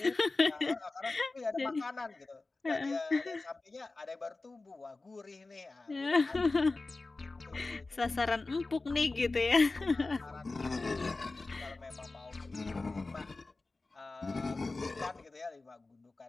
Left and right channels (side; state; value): right; quieter; 3.4 dB